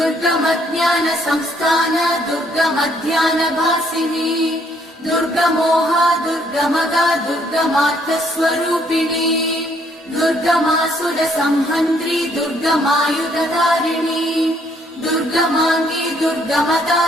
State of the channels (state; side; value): normal; both; correlation 0.67